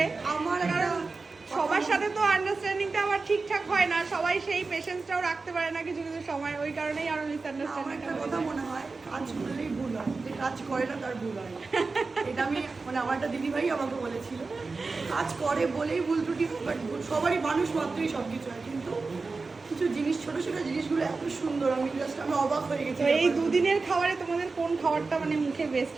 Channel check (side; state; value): left; quieter; 4.0 dB